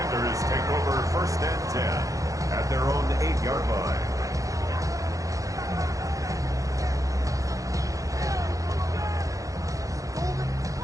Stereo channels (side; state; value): left; late; 0.16 ms